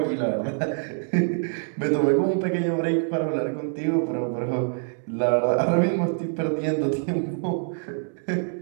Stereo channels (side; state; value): left; silent; 62 dB below the other